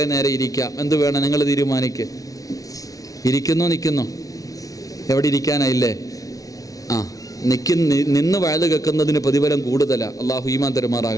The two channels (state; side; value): late; right; 0.18 ms